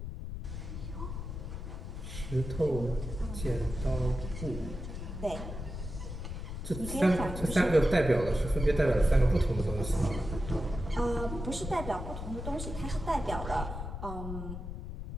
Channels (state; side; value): noise; left; rumble, 7 dB below the sound